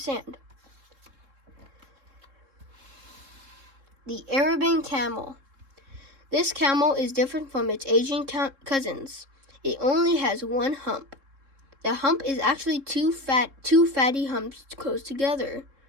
The Arabian camel. This camel is different from its Asian cousins. It only has 1 hump. The hump is actually two fatty humps close together.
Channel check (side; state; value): left; late; 3.7 ms